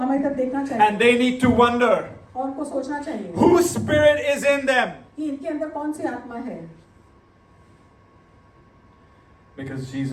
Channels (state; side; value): identical; both; correlation 1.00